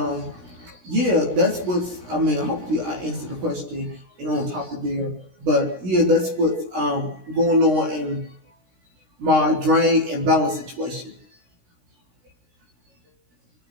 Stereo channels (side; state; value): left; late; 17 ms